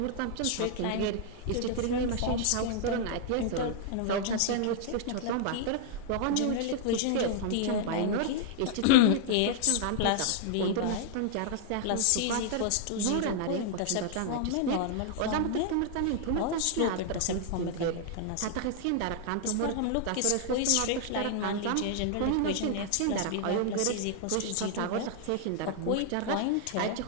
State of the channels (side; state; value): both; different; correlation -0.01